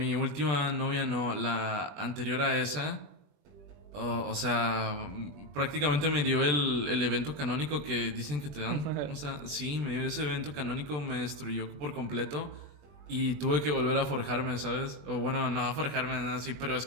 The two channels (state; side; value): late; left; 20 ms